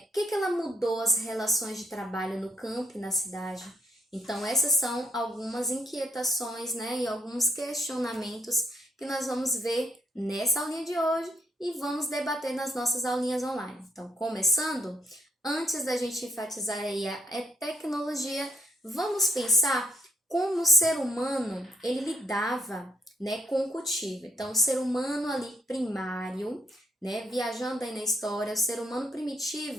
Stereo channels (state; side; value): normal; both; correlation 0.73